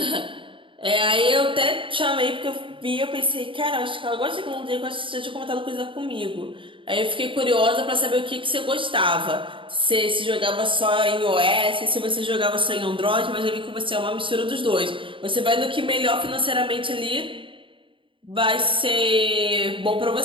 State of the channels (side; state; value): left; late; 0.25 ms